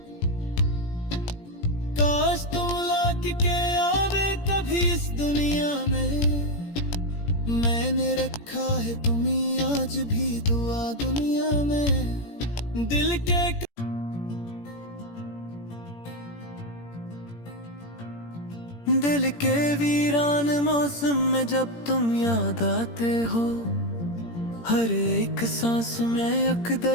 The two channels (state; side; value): late; right; 17 ms